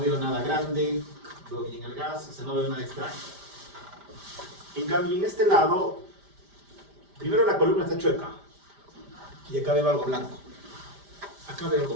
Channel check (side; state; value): left; late; 5.0 ms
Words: nada grande, veo bien el gas, o sea, no veo nada extraño. En cambio, en este lado, primero la columna está chueca. Y acá veo algo blanco. Acá veo algo